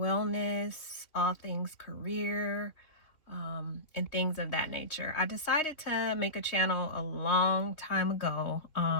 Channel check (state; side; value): late; right; 3.4 ms